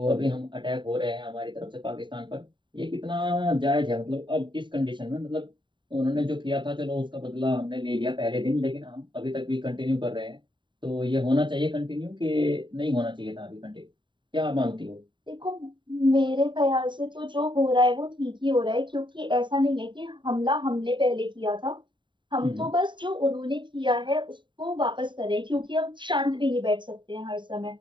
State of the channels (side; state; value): left; late; 0.23 ms